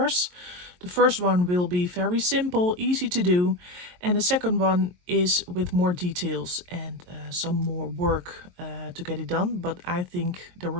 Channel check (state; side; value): late; left; 22 ms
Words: The first one will be very simple, easy to do, and the second one is with more details and some more work to get it done. But I think the